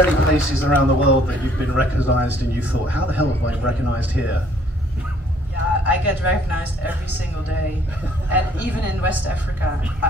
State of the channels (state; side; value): normal; both; correlation 0.62